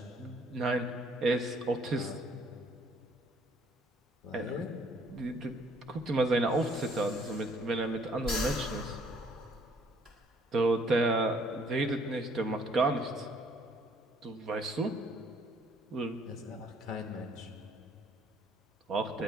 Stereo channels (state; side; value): normal; both; correlation 0.63